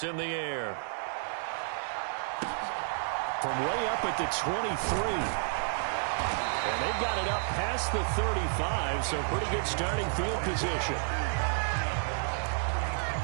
in the air. From way up at the 23. And they've got it up past the 35, so pretty good starting field position.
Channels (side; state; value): left; silent; digital silence